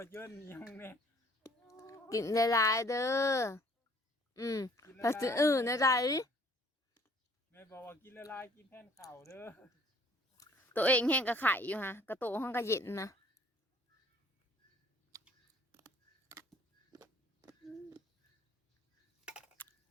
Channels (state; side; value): normal; both; correlation 0.57